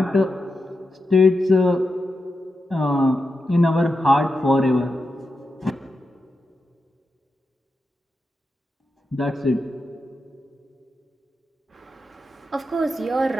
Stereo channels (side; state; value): both; normal; correlation 0.88